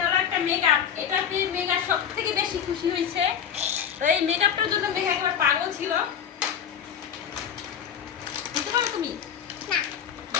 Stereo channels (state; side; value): quieter; right; 8.4 dB